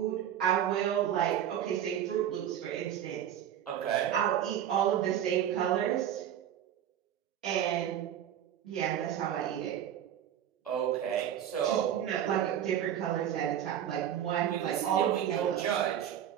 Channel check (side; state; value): left; quieter; 10.2 dB